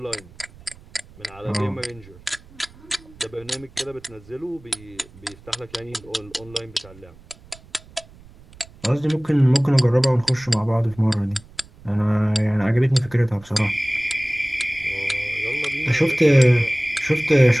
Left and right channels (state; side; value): noise; right; rumble, 23 dB below the sound